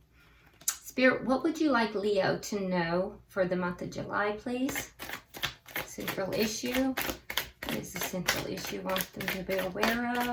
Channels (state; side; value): identical; both; correlation 1.00